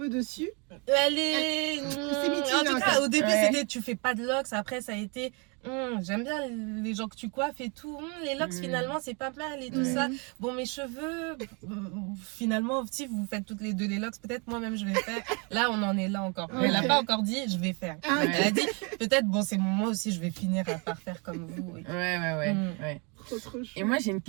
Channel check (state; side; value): quieter; left; 32.7 dB